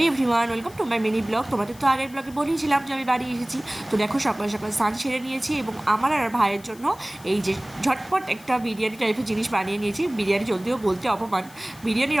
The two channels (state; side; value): noise; left; hiss, 22 dB below the sound